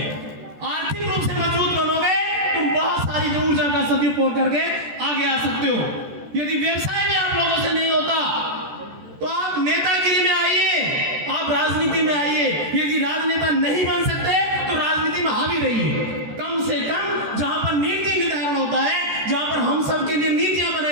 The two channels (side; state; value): left; late; 14 ms